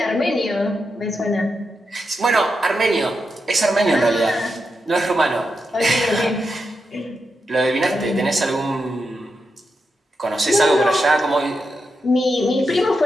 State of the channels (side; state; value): both; normal; correlation 0.86